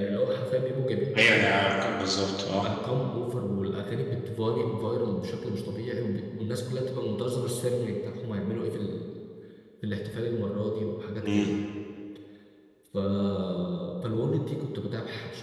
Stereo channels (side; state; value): both; identical; correlation 1.00